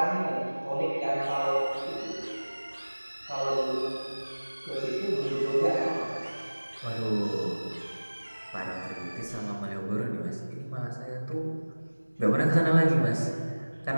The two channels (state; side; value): inverted; both; correlation -1.00